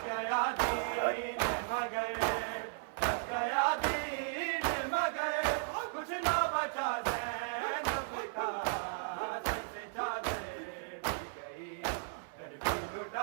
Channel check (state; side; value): silent; left; 54 dB below the other